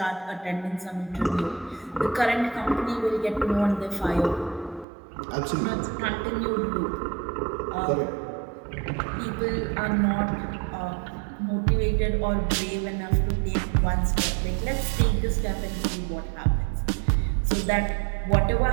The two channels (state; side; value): drops out; left; at 4.9 s